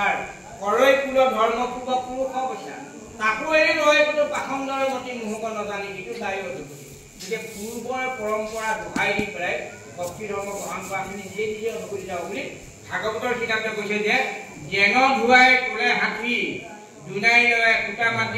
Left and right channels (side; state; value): both; identical; correlation 1.00